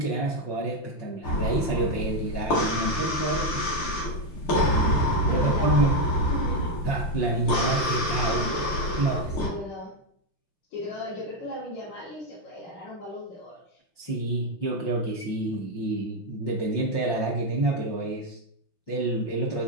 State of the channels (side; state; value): right; late; 5.8 ms